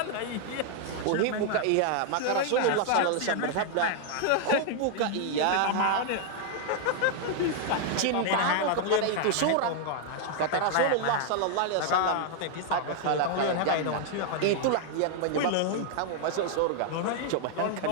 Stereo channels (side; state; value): both; different; correlation 0.00